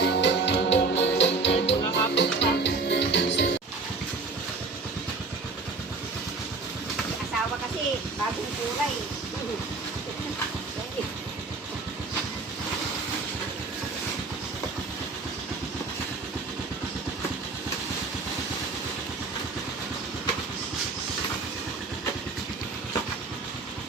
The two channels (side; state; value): left; quieter; 4.0 dB